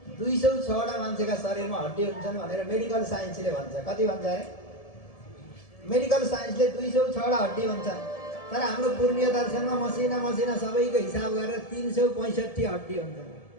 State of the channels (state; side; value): late; right; 1.7 ms